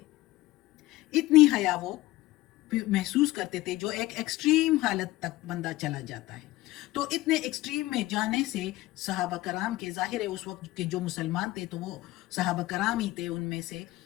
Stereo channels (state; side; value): quieter; right; 17.9 dB